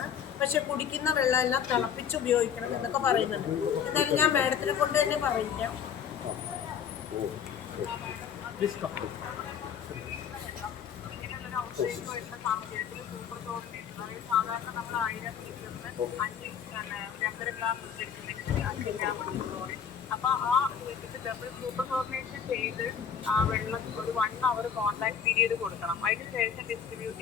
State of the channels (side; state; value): right; quieter; 7.8 dB